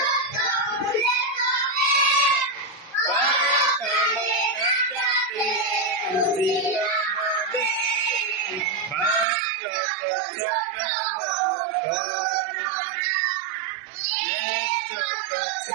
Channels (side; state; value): left; drops out; at 9.2 s